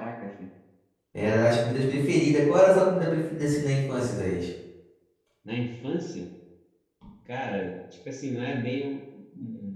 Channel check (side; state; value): both; identical; correlation 1.00